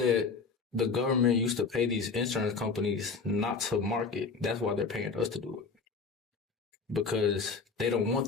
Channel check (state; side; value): quieter; right; 4.8 dB